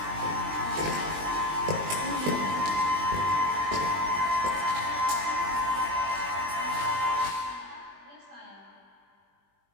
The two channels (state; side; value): late; left; 20 ms